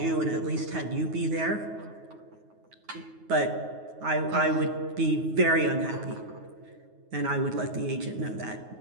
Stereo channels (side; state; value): left; late; 9.4 ms